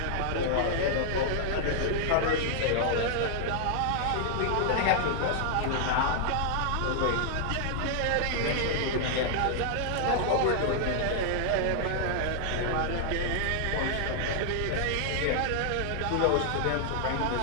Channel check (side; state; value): both; different; correlation 0.00